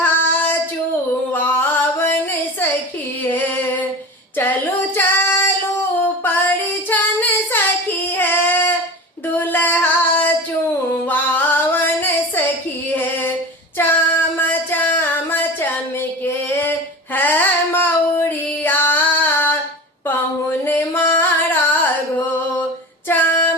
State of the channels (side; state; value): both; normal; correlation 0.32